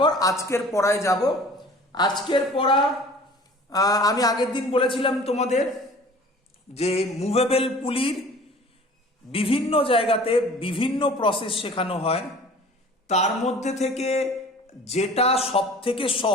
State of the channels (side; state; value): both; normal; correlation 0.46